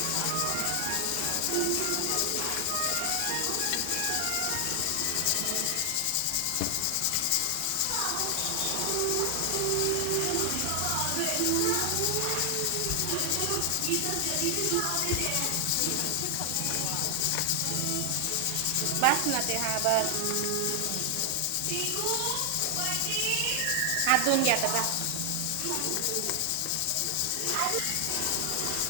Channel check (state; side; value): different; both; correlation 0.00